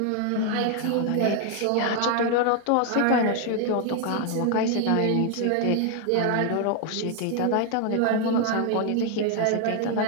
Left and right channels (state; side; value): different; both; correlation 0.00